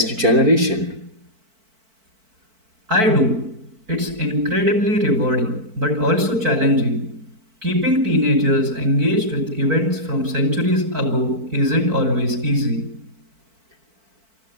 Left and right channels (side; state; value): left; late; 4.5 ms